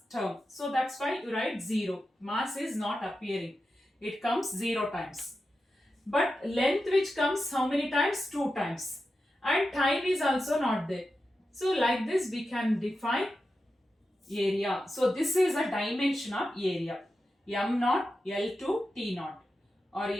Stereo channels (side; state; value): both; normal; correlation 0.91